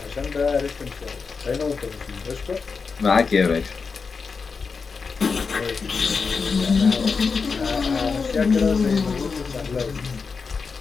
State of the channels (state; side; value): quieter; right; 5.0 dB